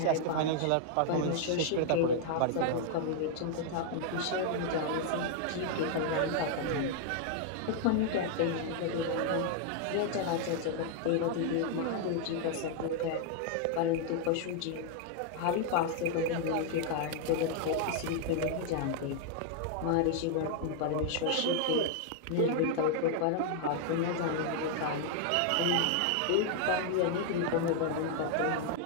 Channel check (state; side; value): different; both; correlation 0.00